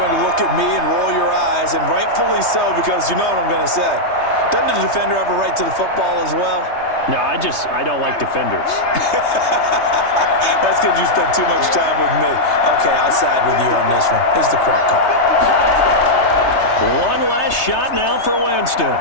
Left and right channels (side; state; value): right; late; 3.3 ms